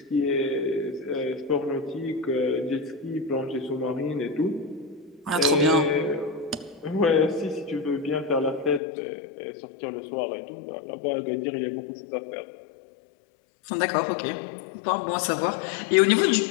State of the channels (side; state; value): right; drops out; at 8.8 s